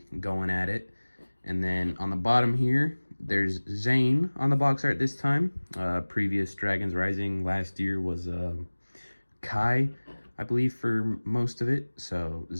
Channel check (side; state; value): both; inverted; correlation -1.00